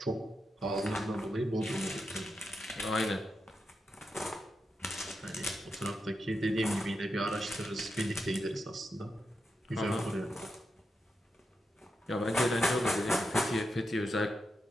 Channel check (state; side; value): normal; both; correlation 0.87